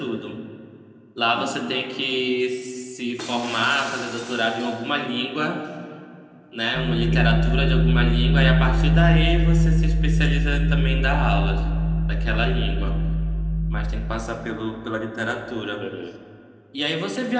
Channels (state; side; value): identical; both; correlation 1.00